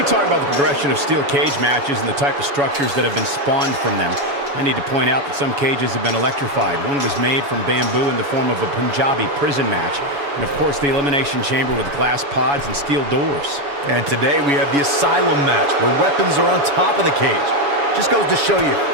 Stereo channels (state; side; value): late; left; 7.1 ms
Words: talk about the progression of steel cage matches and the type of structures that have been spawned from them. I need to point out that some cages have been electrified. One was made from bamboo in the form of a Punjabi prison match. And of course, the Elimination Chamber with glass pods and steel doors. And today we have the Asylum match, where weapons are on top of the cage. Just goes to show you